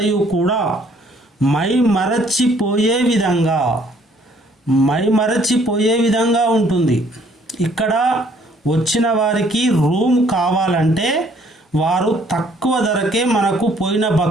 కూడా మైమరచిపోయే విధంగా ఉంటుంది. ఇక్కడ వచ్చిన వారికి రూమ్ కావాలంటే వారు తక్కువ ధరకే మనకు పోయిన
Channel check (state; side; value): normal; both; correlation 0.62